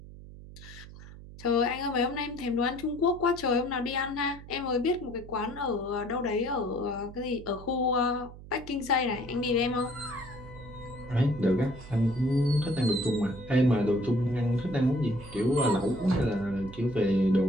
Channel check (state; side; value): noise; right; hum, 16 dB below the sound